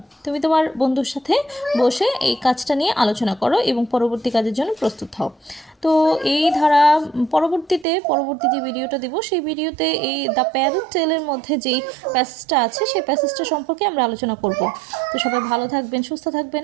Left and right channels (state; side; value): drops out; left; at 7.9 s